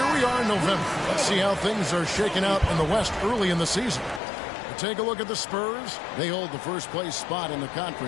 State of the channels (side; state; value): right; drops out; at 4.2 s